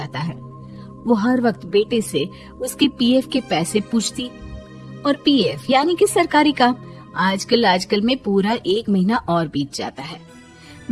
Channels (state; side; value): identical; both; correlation 1.00